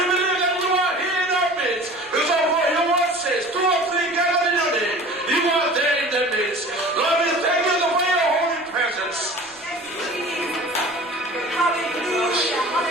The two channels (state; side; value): noise; right; rumble, 30 dB below the sound